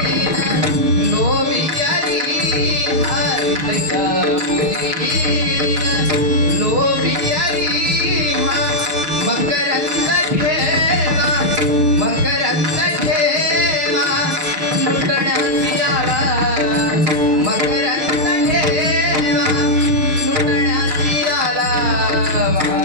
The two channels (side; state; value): left; late; 6.8 ms